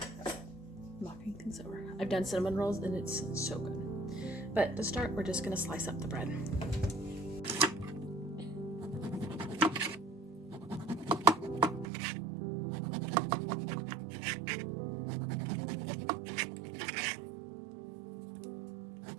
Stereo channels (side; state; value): left; drops out; at 11.9 s